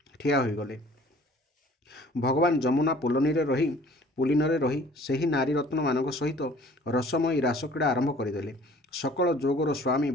ଠିଆ ହୋଇଗଲେ। ଭଗବାନ ଯମୁନା ପୁଲିନରେ ରହି ସେହି ନାରୀ ରତ୍ନମାନଙ୍କ ସହିତ ରସମୟୀ ରାସକ୍ରୀଡ଼ା ଆରମ୍ଭ କରିଦେଲେ। ସକଳ ଯୋଗର ସ୍ୱାମୀ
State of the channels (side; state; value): both; normal; correlation 0.52